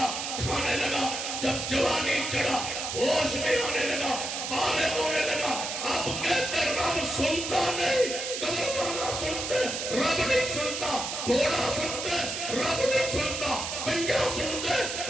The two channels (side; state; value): right; noise; hiss, 4 dB below the sound